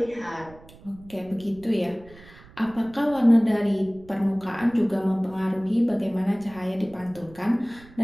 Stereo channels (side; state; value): right; noise; rumble, 22 dB below the sound